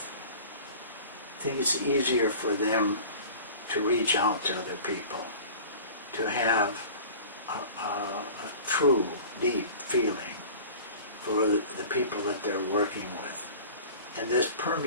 I think it's easier for them to reach out to other people, to have a true, deep feeling for the people that they're working with. And this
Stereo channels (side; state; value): both; inverted; correlation -0.41